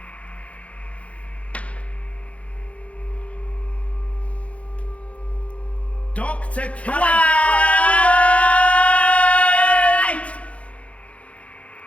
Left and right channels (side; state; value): right; late; 0.064 ms